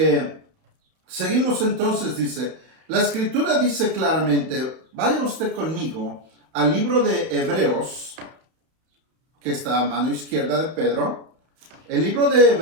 seguimos entonces, dice, la Escritura dice claramente, vaya usted conmigo al libro de Hebreos, que está a mano izquierda de Pedro, el libro de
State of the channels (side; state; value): left; late; 32 ms